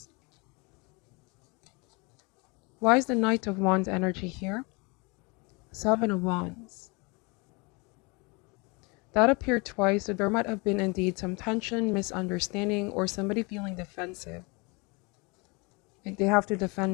Why is the Knight of Wands energy here? Seven of Wands. That appeared twice, so there might have been indeed some tension, misunderstanding, or somebody feeling defensive. Like they have to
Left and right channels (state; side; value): quieter; right; 28.9 dB